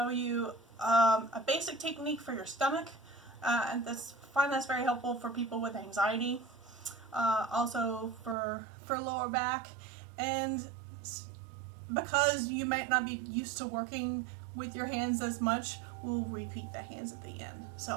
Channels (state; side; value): drops out; left; at 8.3 s